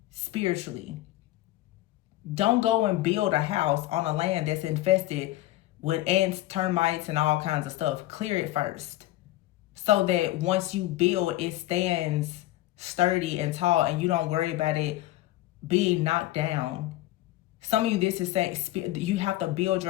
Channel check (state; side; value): quieter; right; 16.1 dB